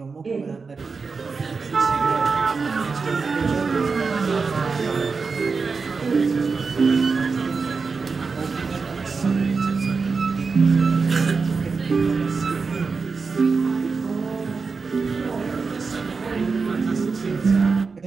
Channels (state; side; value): quieter; left; 4.8 dB